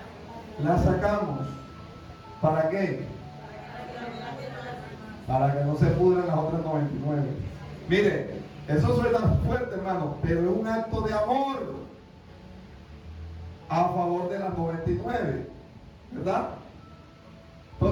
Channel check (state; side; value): identical; both; correlation 1.00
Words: La sacamos. ¿Para qué? Para que no se pudran las otras 99. Mire, eso suena fuerte, hermano, pero es un acto de amor a favor de las 99, ¿verdad?